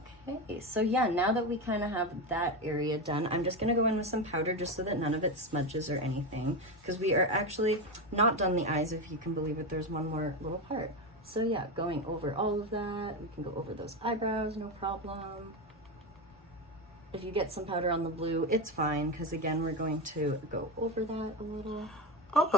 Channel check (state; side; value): normal; both; correlation 0.15